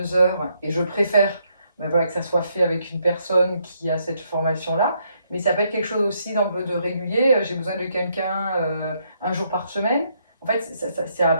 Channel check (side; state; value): both; inverted; correlation -0.74